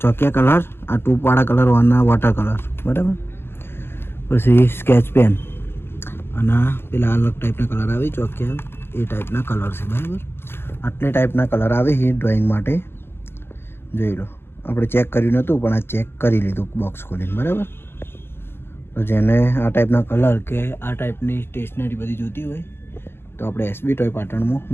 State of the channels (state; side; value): late; right; 0.11 ms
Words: ચોકિયા કલર, આ ટૂપવાળા કલર, વાના વોટર કલર, બરાબર? પછી સ્કેચ પેન અને પેલા અલગ ટાઈપના કલર આવી ચોકિયા, એ ટાઈપના કલર છે, બરાબર? આટલી ટાઈપના કલર આવે છે ડ્રોઈંગ માટે. જોઈ લો આપણે ચેક કર્યું નહોતું પણ આ ચેક કરી લીધું બોક્સ ખોલીને, બરાબર? તો જેને આ ટાઈપના કલર કે આ ટાઈપની સ્ટેશનરી બધી જોતી હોય તો આપણે એસબી ટોય પાટણમાં